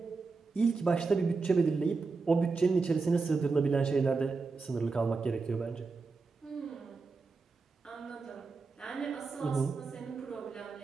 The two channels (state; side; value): quieter; left; 4.3 dB